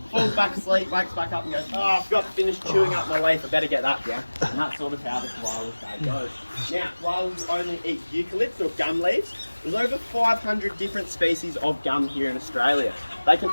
falls back asleep, wakes back up and goes, oh, I forgot to finish chewing up my leaf, I better get that down. And that's sort of how the koala's day goes. Now, koalas only eat eucalypts or gum leaves. There's over 500 different species of gum here in Australia. They can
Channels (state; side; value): inverted; both; correlation -1.00